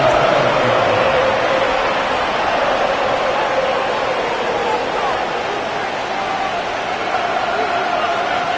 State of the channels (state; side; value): identical; both; correlation 1.00